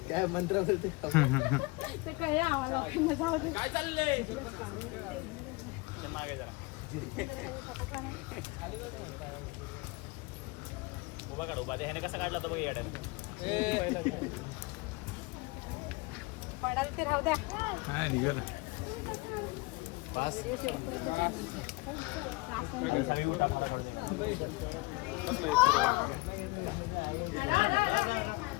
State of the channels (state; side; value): quieter; right; 24.7 dB